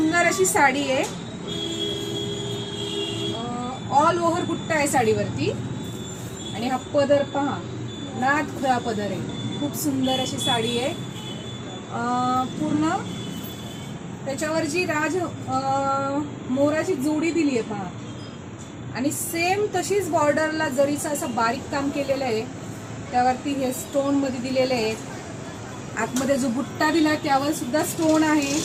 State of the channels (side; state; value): both; identical; correlation 1.00